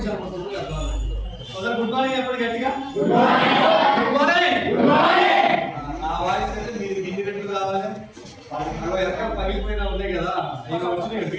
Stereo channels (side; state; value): both; identical; correlation 1.00